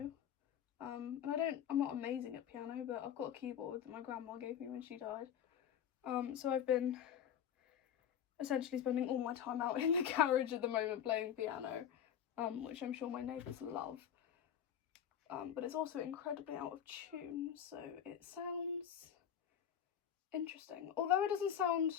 And I'm not amazing at piano, but I've got a keyboard that my grandma gave me when she died. So I've been essentially spending all my time out in the garage at the moment playing piano, which I'm sure my neighbours love. But it's also incredibly out of tune, so it sounds interesting. Although it doesn't sound,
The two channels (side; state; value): right; quieter; 9.2 dB